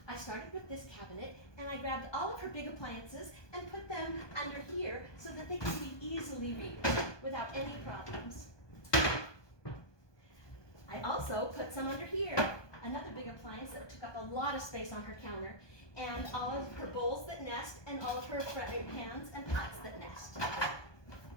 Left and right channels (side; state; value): right; late; 1.2 ms